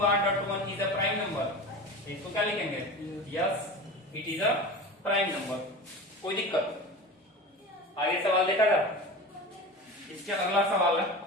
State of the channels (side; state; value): both; normal; correlation 0.31